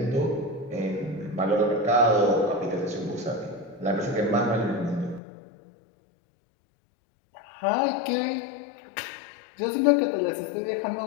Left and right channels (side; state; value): right; drops out; at 5.2 s